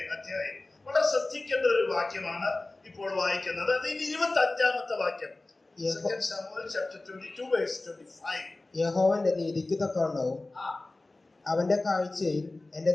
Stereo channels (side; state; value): right; quieter; 3.0 dB